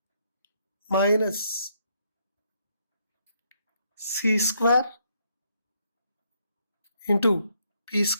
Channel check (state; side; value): inverted; both; correlation -0.72